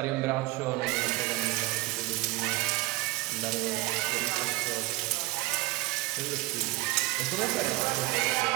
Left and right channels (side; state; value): left; quieter; 20.1 dB